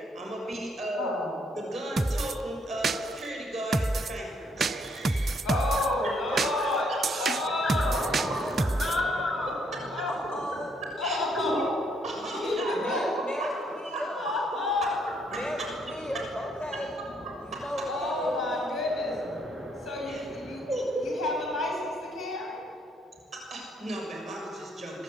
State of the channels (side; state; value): both; normal; correlation 0.71